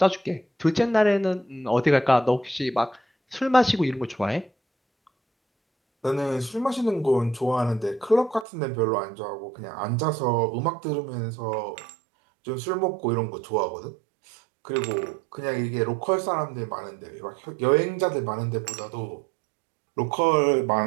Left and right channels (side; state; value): left; drops out; at 8.5 s